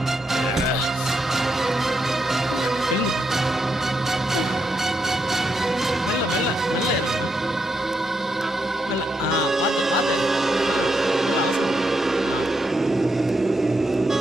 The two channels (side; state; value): both; normal; correlation 0.81